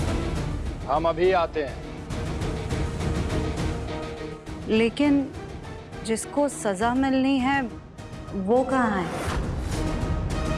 हम अभी आते हैं। लेकिन जिसको सजा मिलनी है वो कहाँ है?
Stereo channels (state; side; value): identical; both; correlation 1.00